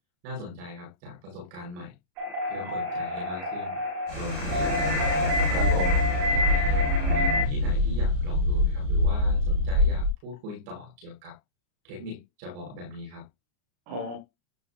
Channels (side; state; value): left; late; 33 ms